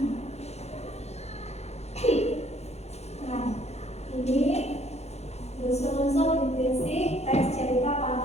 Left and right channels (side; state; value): right; late; 0.31 ms